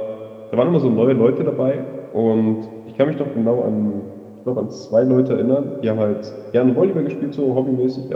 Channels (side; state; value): both; identical; correlation 1.00